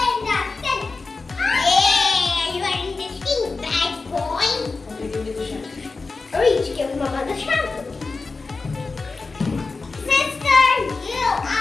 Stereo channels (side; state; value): right; quieter; 4.0 dB